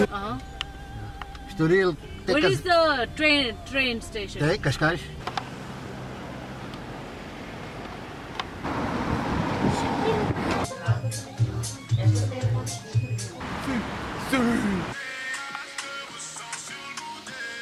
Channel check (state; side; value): identical; both; correlation 1.00